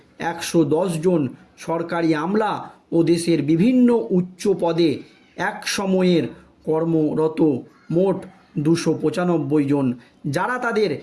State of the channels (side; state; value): both; identical; correlation 1.00